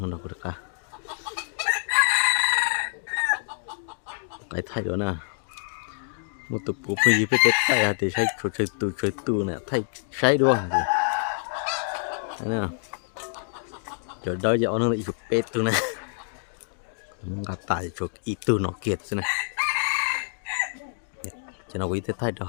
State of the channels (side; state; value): right; silent; digital silence